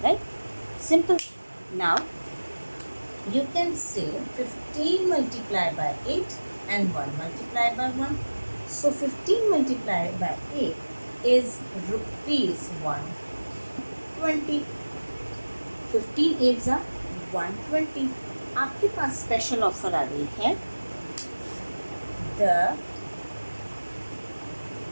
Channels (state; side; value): inverted; both; correlation -1.00